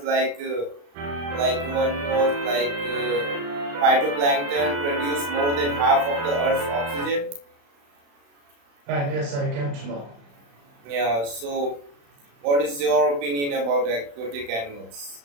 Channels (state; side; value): late; left; 35 ms